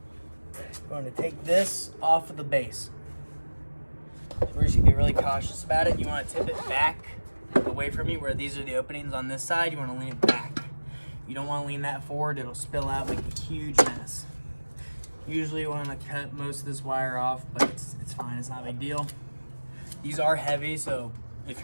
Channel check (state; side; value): inverted; both; correlation -1.00